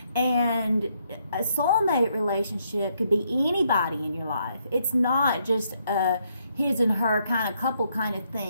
And a soulmate relationship could be anybody in your life. It's not just a his and her kind of couple kind of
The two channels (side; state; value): both; inverted; correlation -0.74